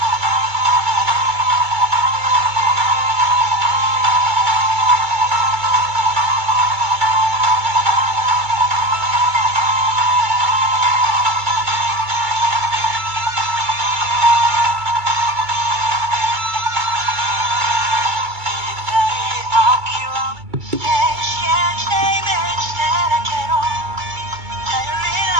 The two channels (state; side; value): late; left; 2.3 ms